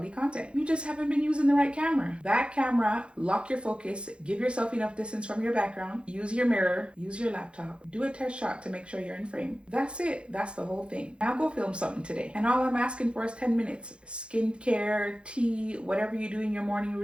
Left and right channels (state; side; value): late; left; 0.057 ms